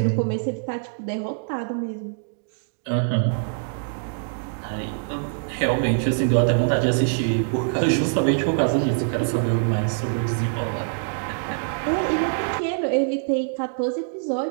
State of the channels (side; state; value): left; silent; digital silence